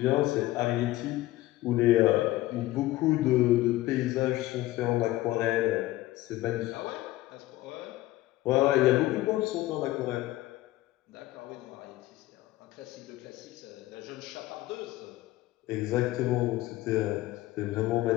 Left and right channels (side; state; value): right; quieter; 16.8 dB